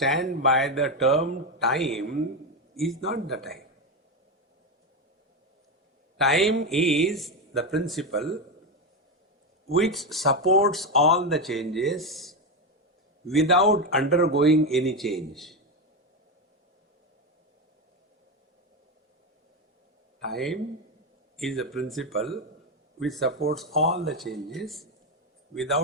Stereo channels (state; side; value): normal; both; correlation 0.11